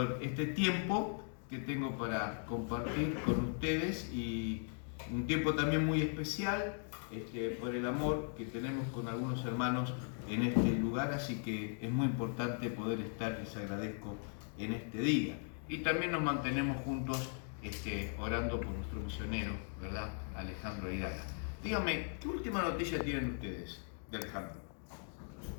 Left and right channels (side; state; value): right; silent; 52 dB below the other